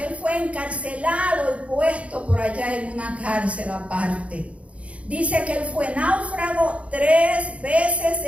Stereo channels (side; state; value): left; late; 0.063 ms